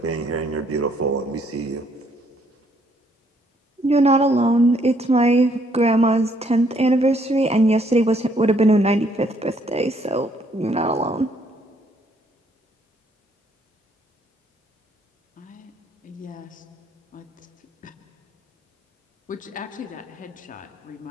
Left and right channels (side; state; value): both; normal; correlation 0.68